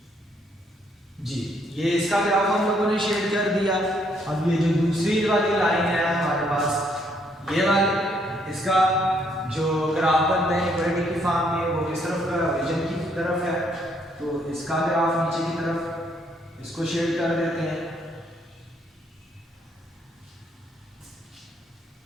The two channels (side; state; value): both; normal; correlation 0.70